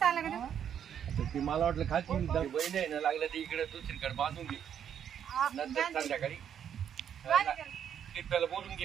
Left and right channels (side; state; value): left; quieter; 8.9 dB